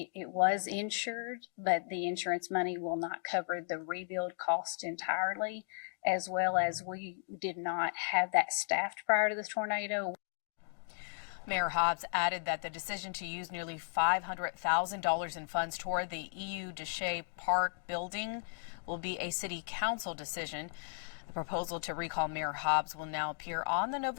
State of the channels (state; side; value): silent; right; digital silence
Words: was insured, but the insurance money will not cover the rebuild cost entirely, as well as we did not have that staffed prior to the tornado. Mayor Hobbs added that the decision to use nearly $500,000 in funds toward the EU Deshay Park building will be a city council decision. The proposal to recall Mayor Hobbs will now appear on the